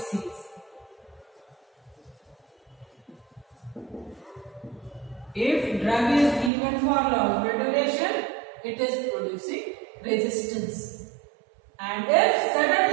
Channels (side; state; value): left; drops out; at 6.5 s